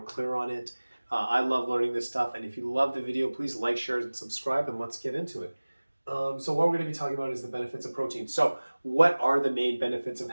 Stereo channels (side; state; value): both; inverted; correlation -1.00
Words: clear on it. I love learning this stuff, and if you love the video, please like, share, and subscribe, and let's get into it. So what we're going to be talking about is the benefits of protein. So what are the main benefits of